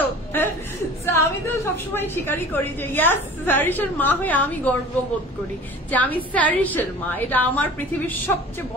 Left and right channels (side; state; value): both; normal; correlation 0.42